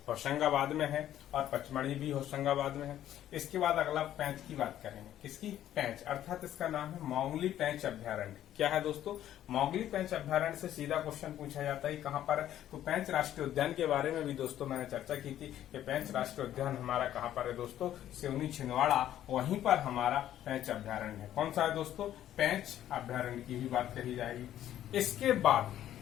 होशंगाबाद में है और पचमढ़ी भी होशंगाबाद में है। इसके बाद अगला पेंच की बात करेंगे। किसकी? पेंच, अर्थात इसका नाम है मोंगली पेंच अभ्यारण्य। क्या है दोस्तों? मोंगली पेंच अभ्यारण्य से सीधा क्वेश्चन पूछा जाता है कहाँ पर है? तो पेंच राष्ट्रीय उद्यान के बारे में भी दोस्तों मैंने चर्चा की थी कि पेंच राष्ट्रीय उद्यान हमारा कहाँ पर है दोस्तों? सिवनी छिंदवाड़ा, वहीं पर हमारा पेंच अभ्यारण्य है। कौन सा है दोस्तों? पेंच अभ्यारण्य की भी बात कही जाएगी। इसके बाद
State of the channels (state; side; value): quieter; right; 11.9 dB